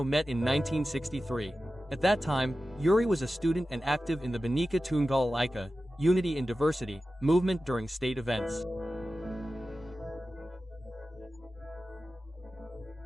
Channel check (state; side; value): normal; both; correlation 0.94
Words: met in 1963. At that time, Yuri was a student and active in the Bhinneka Tunggal Ika, Unity in Diversity, movement during state events.